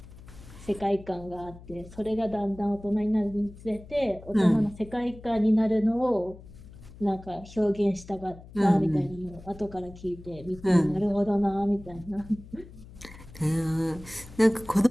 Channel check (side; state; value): left; noise; hum, 18 dB below the sound